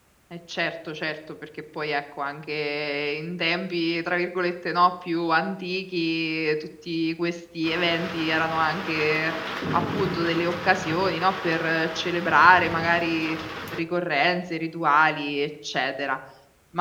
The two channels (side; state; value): both; identical; correlation 1.00